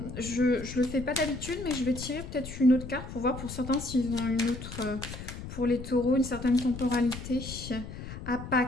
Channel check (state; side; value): noise; left; rumble, 10 dB below the sound